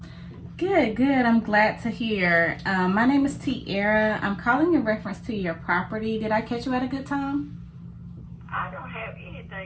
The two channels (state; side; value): identical; both; correlation 1.00